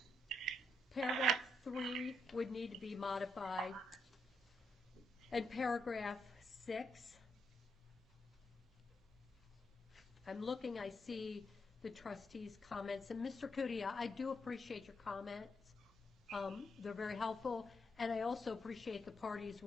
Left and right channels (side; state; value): both; normal; correlation 0.80